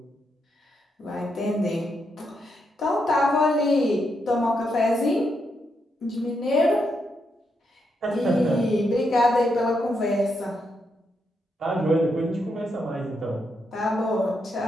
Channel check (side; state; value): both; normal; correlation 0.81